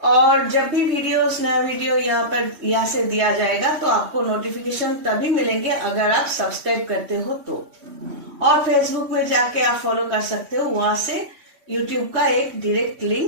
और जब भी नया वीडियो यहाँ से दिया जाएगा तो आपको नोटिफिकेशन तभी मिलेंगे अगर आप सब्सक्राइब करते हो तो। और फेसबुक में जाके आप फॉलो कर सकते हो, वहां से यूट्यूब का एक डायरेक्ट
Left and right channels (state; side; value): late; left; 3.1 ms